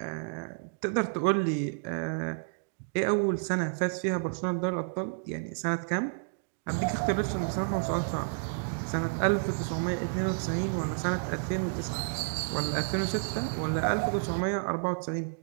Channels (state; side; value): silent; left; digital silence